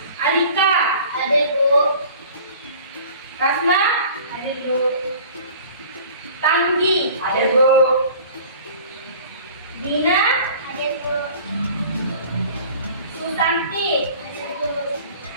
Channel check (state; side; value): inverted; both; correlation -0.46